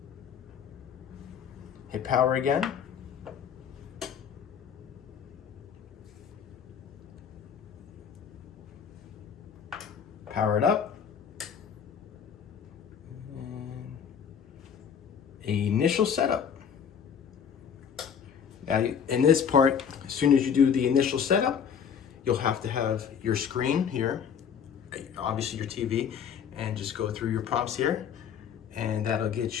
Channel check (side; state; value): right; quieter; 7.6 dB